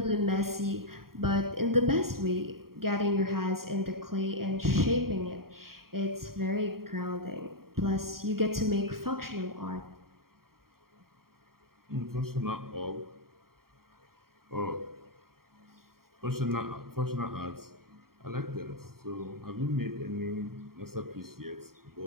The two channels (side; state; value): left; late; 0.93 ms